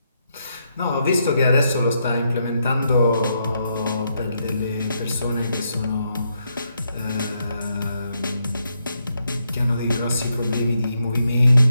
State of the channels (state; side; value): inverted; both; correlation -0.80